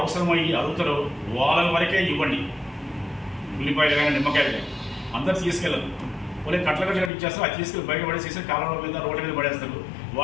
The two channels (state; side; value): drops out; right; at 7.1 s